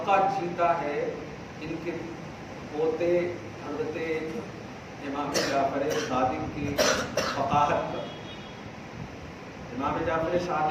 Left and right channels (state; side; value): identical; both; correlation 1.00